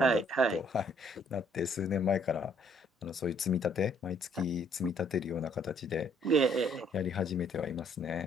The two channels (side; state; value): both; normal; correlation 0.64